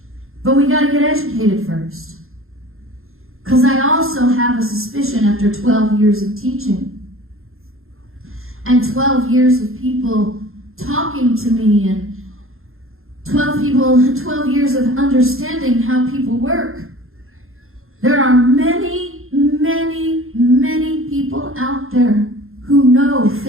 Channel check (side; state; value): left; late; 0.61 ms